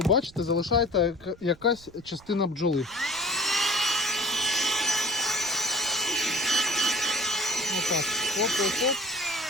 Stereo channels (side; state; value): right; noise; rumble, 24 dB below the sound